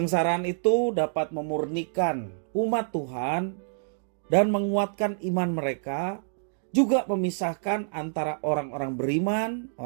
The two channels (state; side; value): silent; left; digital silence